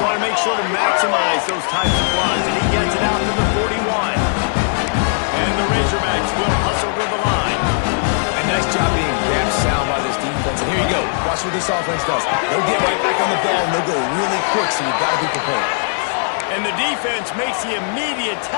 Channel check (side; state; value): right; silent; digital silence